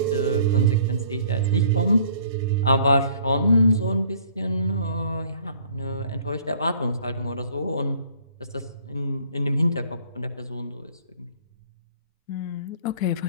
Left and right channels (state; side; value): inverted; both; correlation -0.56